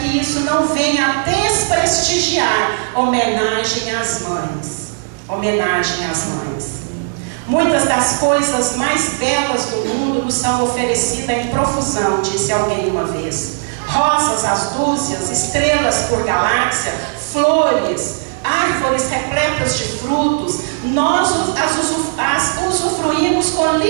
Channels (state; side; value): silent; left; digital silence